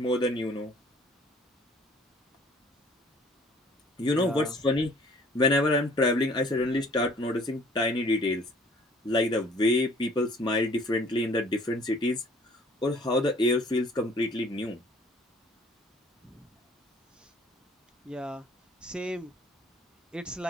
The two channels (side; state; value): both; normal; correlation 0.55